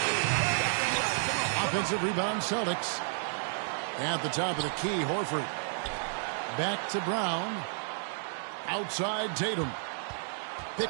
Offensive rebound, Celtics. At the top of the key, Horford. Back to Brown. Outside Tatum.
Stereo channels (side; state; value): left; silent; digital silence